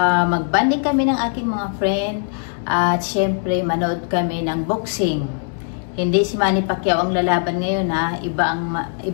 kami ng aking mga friend at syempre manood kami ng boxing. Hindi si Manny Pacquiao ang lalaban ngayon ha, iba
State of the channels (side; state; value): right; silent; 62 dB below the other